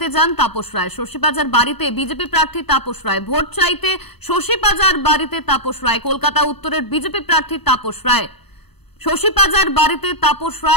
যান তাপস রায়। শশী পাঁজার বাড়িতে বিজেপি প্রার্থী তাপস রায়। ভোট চাইতে শশী পাঁজার বাড়িতে তাপস রায়। কলকাতা উত্তরের বিজেপি প্রার্থী তাপস রায়। শশী পাঁজার বাড়িতে তাপস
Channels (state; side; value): late; right; 0.98 ms